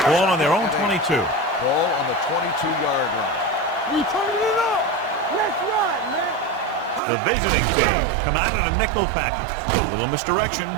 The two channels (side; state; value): left; drops out; at 7.0 s